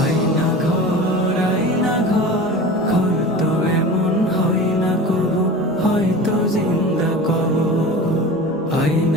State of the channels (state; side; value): normal; both; correlation 0.34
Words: আয়না ঘর, আয়না ঘর, ঘর তো এমন হয় না কবু, হয়তো জিন্দা কবর।